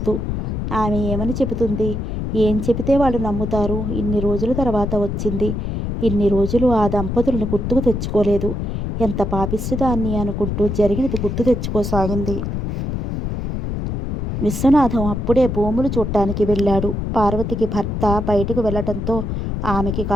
ఆమె ఏమని చెబుతుంది? ఏం చెబితే వాళ్ళు నమ్ముతారు? ఇన్ని రోజుల తర్వాత వచ్చింది. ఇన్ని రోజులు ఆ దంపతులను గుర్తుకు తెచ్చుకోలేదు. ఎంత పాపిష్టిదాన్ని అనుకుంటూ జరిగినది గుర్తు తెచ్చుకోసాగింది. విశ్వనాథం అప్పుడే భూములు చూడటానికి వెళ్ళాడు. పార్వతికి భర్త బయటకు వెళ్ళటంతో ఆమెకి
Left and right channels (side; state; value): left; noise; rumble, 3 dB below the sound